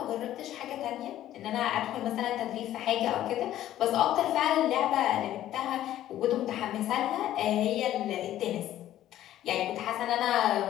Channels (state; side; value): quieter; right; 12.9 dB